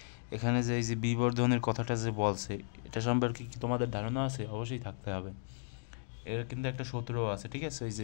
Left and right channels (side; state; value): right; silent; digital silence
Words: এখানে যে এই যে বিবর্ধনের কথাটা যে বলছে এটা সম্পর্কে কি তোমাদের ধারণা আছে? অবশ্যই থাকতে হবে। এর কিন্তু একটা সূত্রও আছে, ঠিক আছে? এই